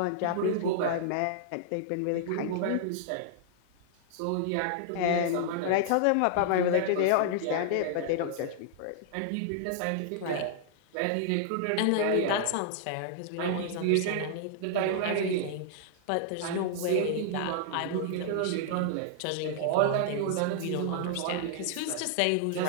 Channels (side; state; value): both; different; correlation -0.01